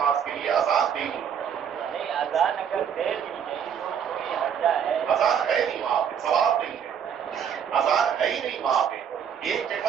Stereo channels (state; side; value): quieter; left; 8.0 dB